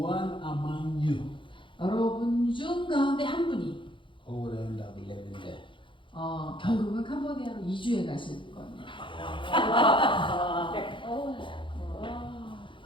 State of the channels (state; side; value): late; right; 0.24 ms